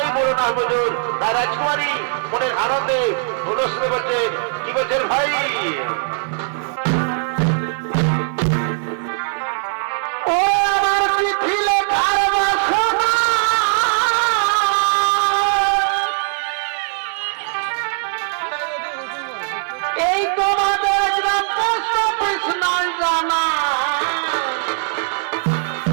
বড় না বুঝুন তাই রাজকুমারী মনের আনন্দে অনুষ্ঠিত করছেন কি বলছেন ভাই এই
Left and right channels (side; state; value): left; silent; 58 dB below the other